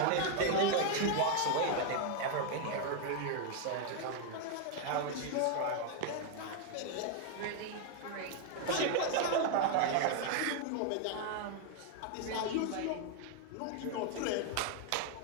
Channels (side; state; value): both; different; correlation 0.00